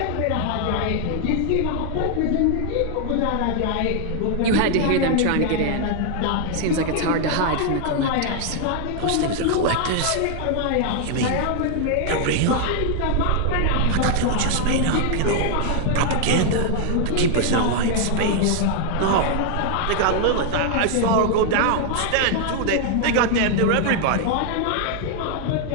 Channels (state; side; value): different; both; correlation 0.00